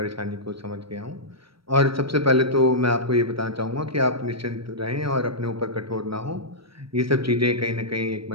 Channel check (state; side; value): late; left; 0.75 ms